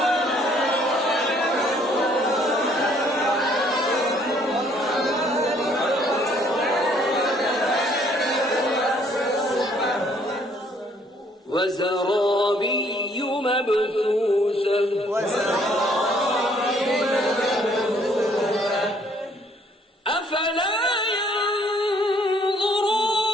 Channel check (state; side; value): normal; both; correlation 0.63